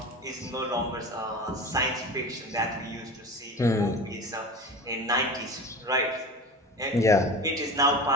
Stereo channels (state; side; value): normal; both; correlation 0.32